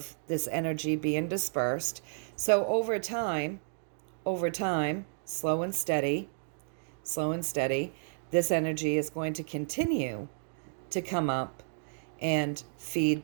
this energy being dispersed. So over time, slow and steady, this energy is going to continue to come up and feed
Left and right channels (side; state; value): left; silent; digital silence